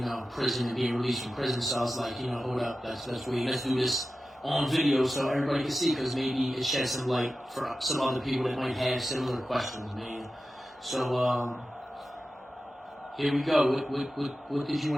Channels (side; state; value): both; normal; correlation 0.93